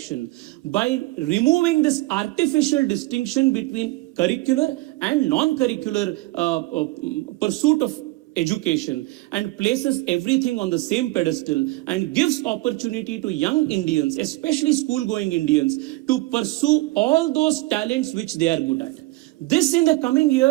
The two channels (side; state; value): left; quieter; 20.4 dB